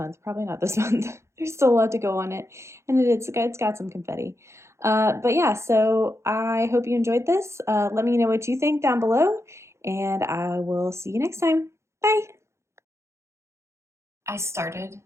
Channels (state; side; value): late; left; 0.13 ms